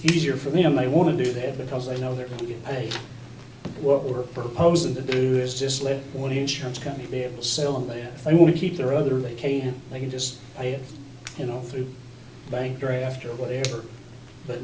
easier for them, they want to do that because they know they're going to get paid. What we're proposing to do is just let one insurance company be able to sell them that. If they want to keep their other, they can just pay it, through bank draft or whatever, but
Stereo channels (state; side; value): identical; both; correlation 1.00